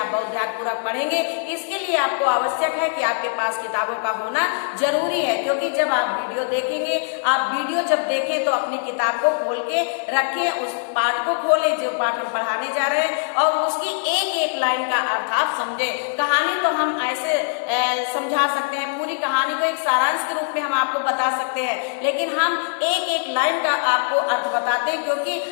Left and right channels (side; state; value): right; silent; digital silence